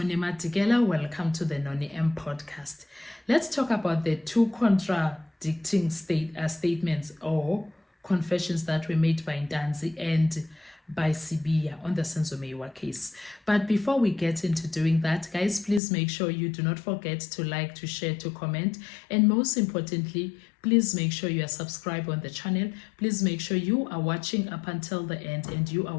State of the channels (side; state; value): right; drops out; at 15.8 s